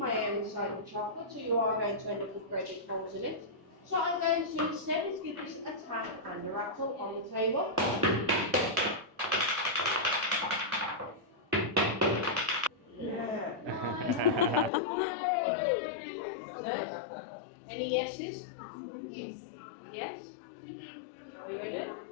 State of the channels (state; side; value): drops out; right; at 14.7 s